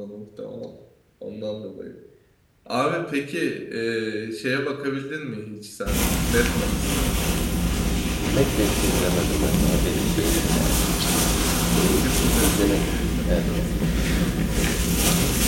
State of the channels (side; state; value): both; identical; correlation 1.00